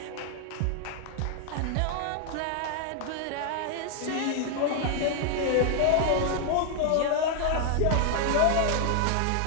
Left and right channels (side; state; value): both; different; correlation 0.00